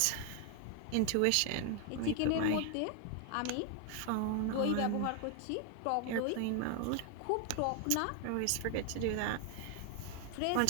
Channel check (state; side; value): different; both; correlation 0.00